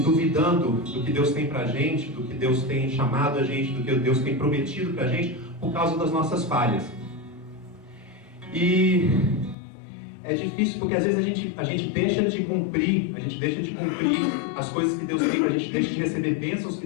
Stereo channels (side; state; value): right; drops out; at 9.6 s